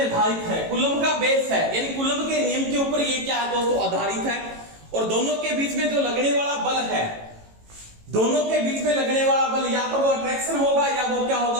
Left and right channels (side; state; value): left; late; 18 ms